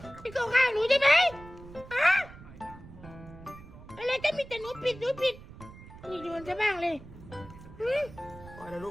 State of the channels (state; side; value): noise; right; rumble, 17 dB below the sound